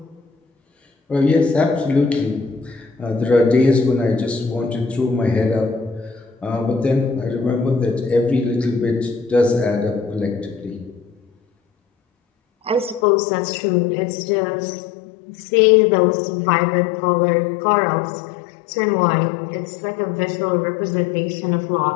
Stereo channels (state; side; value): drops out; right; at 13.1 s